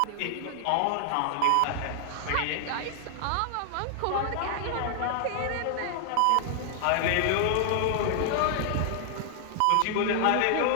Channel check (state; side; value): different; both; correlation 0.00